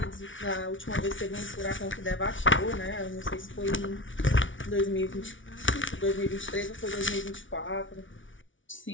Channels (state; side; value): late; right; 0.56 ms